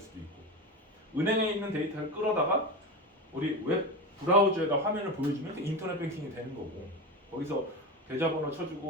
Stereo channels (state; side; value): normal; both; correlation 0.21